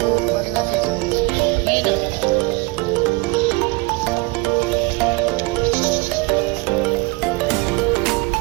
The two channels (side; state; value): left; quieter; 24.4 dB